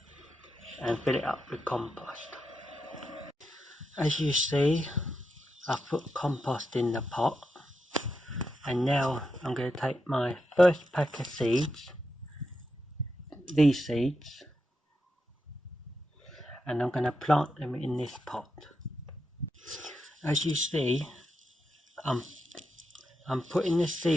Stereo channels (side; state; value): both; normal; correlation 0.85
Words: and fill it up with compost. As you see, I've put compost in the pot, and now I'm going to take my first pack of seeds, these seeds, and I'm going to plant them in this pot. As you see, I'm putting the